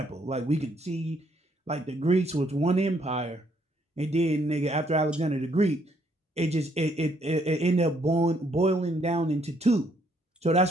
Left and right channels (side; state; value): both; normal; correlation 0.69